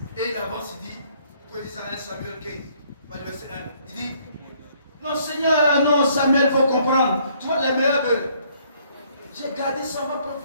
Et il avance, il dit, que dit Samuel 15, verset 1, il dit, non Seigneur, non Samuel, il faut comprendre, tu vois les meilleurs bœufs. J'ai gardé ça pour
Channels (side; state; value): both; inverted; correlation -0.64